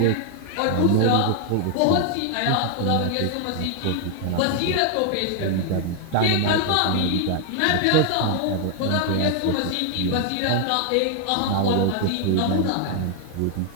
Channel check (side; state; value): both; different; correlation 0.00